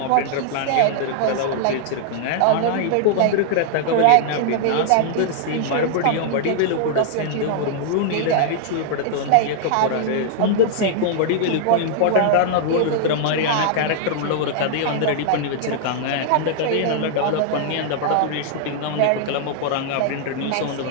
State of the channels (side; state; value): both; different; correlation -0.01